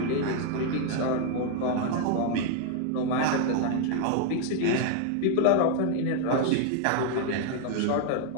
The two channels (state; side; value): different; both; correlation 0.00